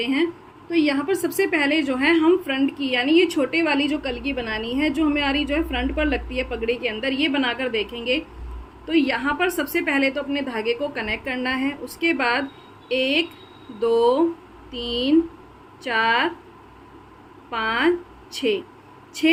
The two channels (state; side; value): identical; both; correlation 1.00